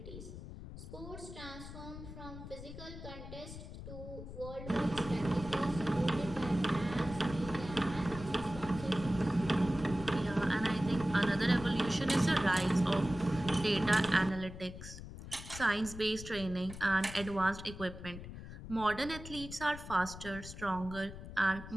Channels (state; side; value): noise; left; rumble, 12 dB below the sound